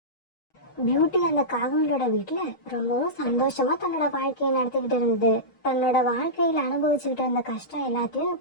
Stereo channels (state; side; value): late; right; 6.4 ms